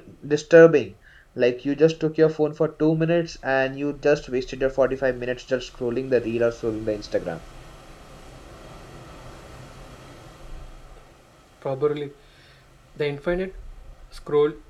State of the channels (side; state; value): both; identical; correlation 1.00